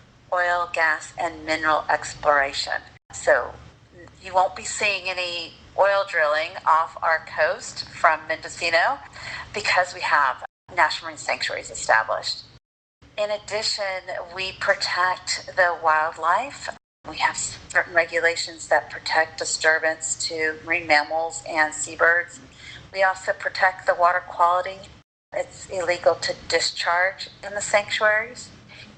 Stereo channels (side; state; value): both; identical; correlation 1.00